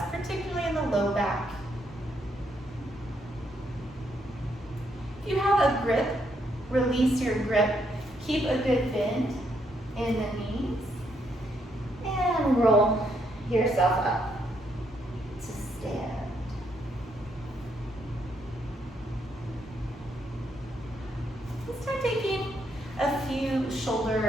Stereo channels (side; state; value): both; normal; correlation 0.75